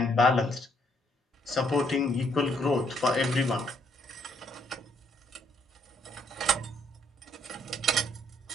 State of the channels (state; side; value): normal; both; correlation 0.69